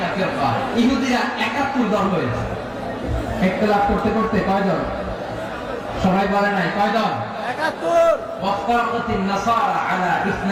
ফিরকা, ইহুদিরা 71 দল হয়েছে। ইখতিলাফ করতে করতে কয় দল? সবাই বলে নাই কয় দল? 71। ওয়াফতারাকাতিন নাসারা আলা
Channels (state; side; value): identical; both; correlation 1.00